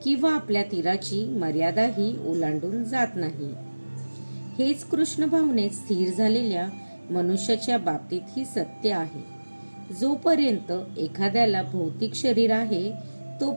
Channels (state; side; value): inverted; both; correlation -1.00